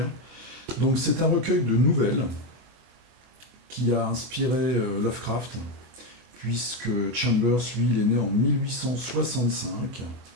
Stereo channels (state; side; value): late; left; 23 ms